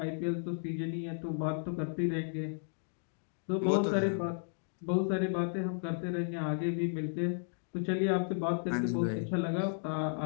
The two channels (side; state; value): right; silent; digital silence